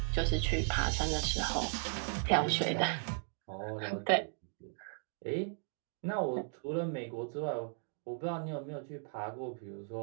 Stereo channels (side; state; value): left; silent; 54 dB below the other